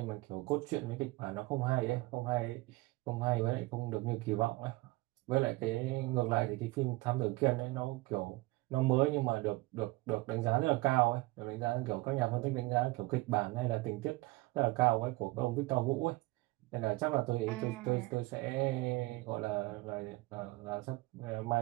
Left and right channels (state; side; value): quieter; left; 21.5 dB